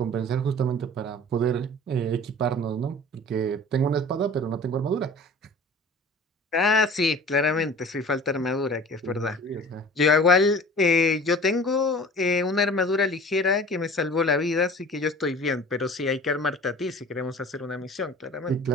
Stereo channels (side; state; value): both; normal; correlation 0.43